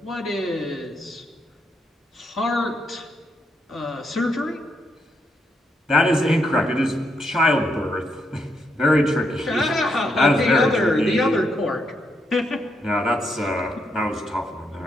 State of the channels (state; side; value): normal; both; correlation 0.79